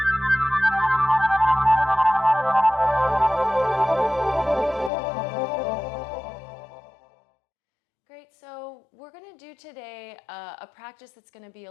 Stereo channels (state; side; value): drops out; right; at 4.9 s